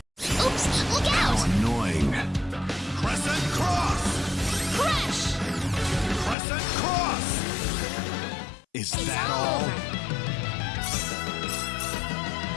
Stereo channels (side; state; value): right; drops out; at 6.4 s